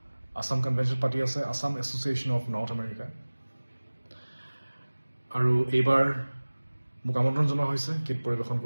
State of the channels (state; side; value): inverted; both; correlation -1.00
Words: আছাম কনভেনশ্যন পাতি আছে Assam association of north America. আৰু এইবাৰ মোক আমন্ত্ৰণ জনোৱা হৈছে গীত পৰিৱেশন